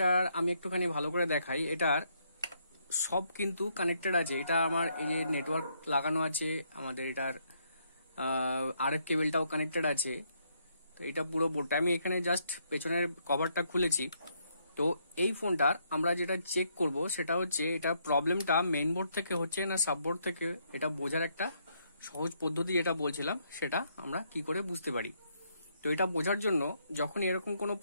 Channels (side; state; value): both; inverted; correlation -0.73